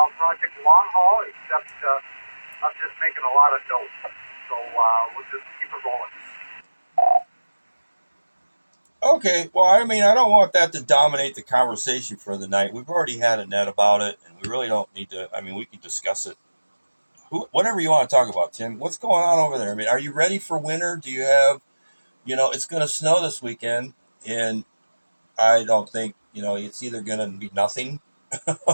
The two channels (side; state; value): both; inverted; correlation -1.00